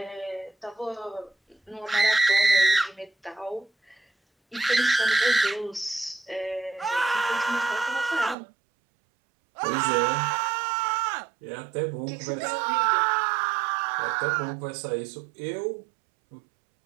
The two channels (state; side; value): drops out; left; at 8.3 s